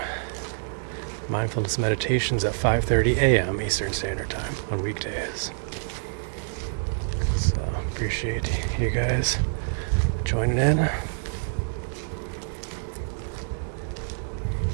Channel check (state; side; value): silent; left; digital silence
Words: mindfulness meditations at 5:30 a.m. Eastern Standard Time on weekdays. So appreciate you guys joining in.